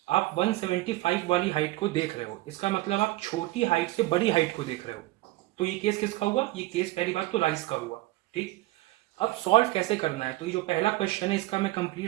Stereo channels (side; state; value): left; quieter; 18.5 dB